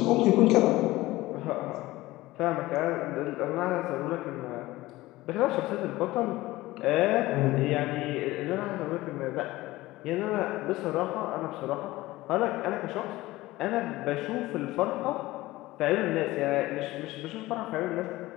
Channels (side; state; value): right; quieter; 18.3 dB